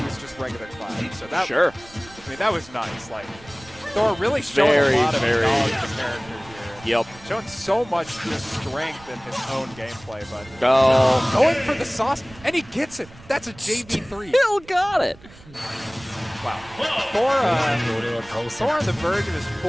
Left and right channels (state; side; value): noise; right; rumble, 21 dB below the sound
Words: was just regular Cloud. So that, Sure. I mean, that was nice. Like, Thor really showing a lot of knowledge of the character here. Yep. Showing so much just strength in his own gameplay, but Go. going for the sauce, and he gets it. That's a JV3. Still got it. Wow. Thor on the verge of his